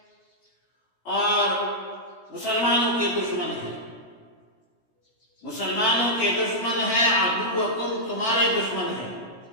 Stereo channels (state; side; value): late; right; 17 ms